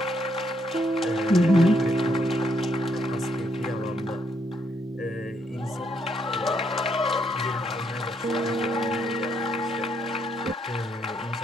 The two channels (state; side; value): normal; both; correlation 0.75